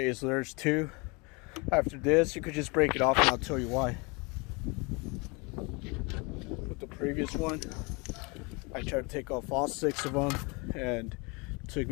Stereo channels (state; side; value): quieter; right; 29.1 dB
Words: so there's 2. After this, you could just break it off, and I'll tell you why. With the previous one, I tried to take off all 6 of them, and it took